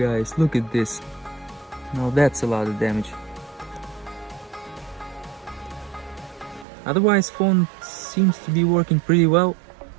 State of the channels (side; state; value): left; drops out; at 6.7 s